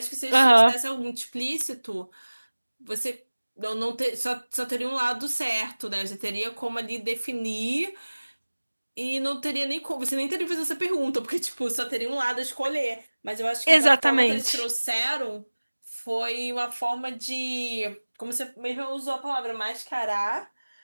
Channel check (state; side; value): inverted; both; correlation -1.00